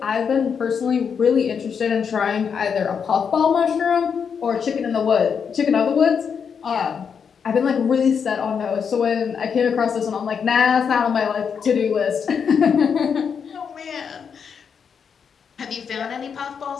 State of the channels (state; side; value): quieter; right; 6.7 dB